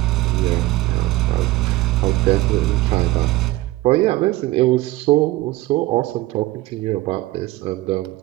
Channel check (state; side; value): quieter; left; 18.2 dB